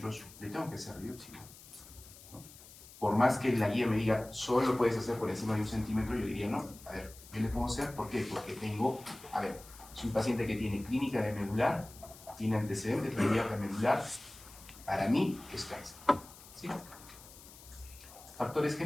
le tengo que hacer biopsia, ¿no? Por más que la guía me diga, solo puedes hacer por encima de 1 centímetro, yo diría, no, a ver, yo le puedo hacer, ¿por qué? Porque tengo, a ver, es un paciente que tiene clínica de medular, tiene antecedentes de hernia medular, para mí es cáncer, ¿sí? Factores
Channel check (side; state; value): left; noise; hiss, 19 dB below the sound